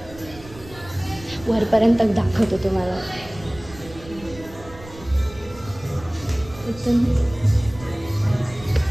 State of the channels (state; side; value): noise; right; rumble, 18 dB below the sound